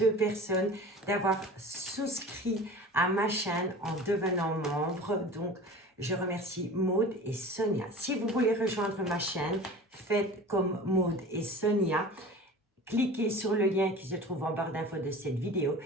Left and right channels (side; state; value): both; normal; correlation 0.38